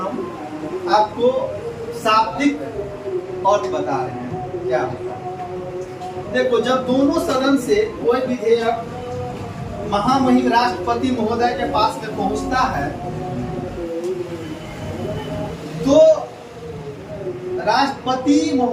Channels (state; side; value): identical; both; correlation 1.00